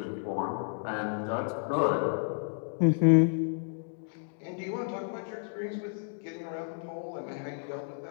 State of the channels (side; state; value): right; silent; digital silence